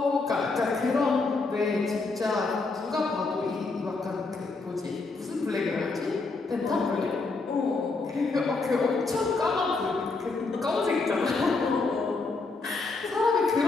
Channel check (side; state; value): right; quieter; 3.8 dB